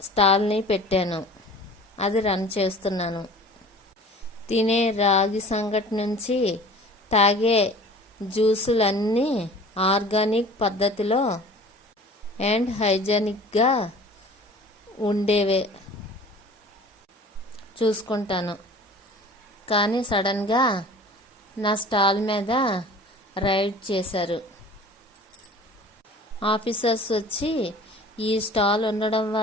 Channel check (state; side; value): normal; both; correlation 0.44